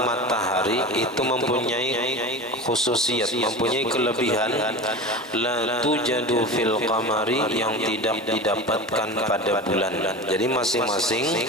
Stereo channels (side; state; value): both; normal; correlation 0.30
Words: matahari itu mempunyai khususiyat, mempunyai kelebihan la tujadu fil qamari, yang tidak didapatkan pada bulan. Jadi masing-masing